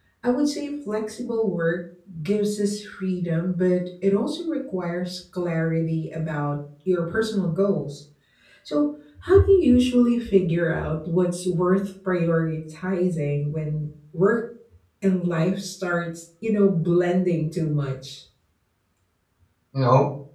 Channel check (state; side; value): identical; both; correlation 1.00